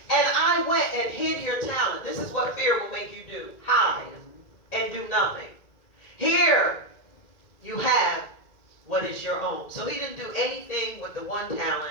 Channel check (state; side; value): late; right; 2.0 ms